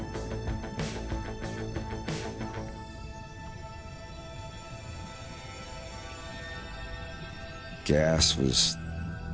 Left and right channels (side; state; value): both; identical; correlation 1.00